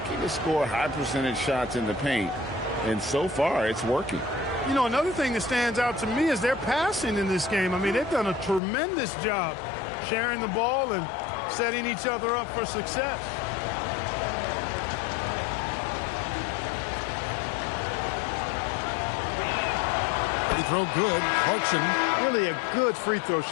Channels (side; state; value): right; drops out; at 8.6 s